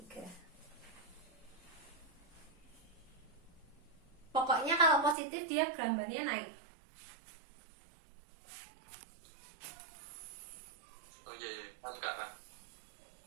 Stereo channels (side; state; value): left; drops out; at 5.2 s